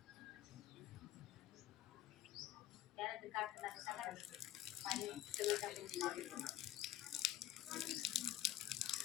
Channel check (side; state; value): right; quieter; 12.7 dB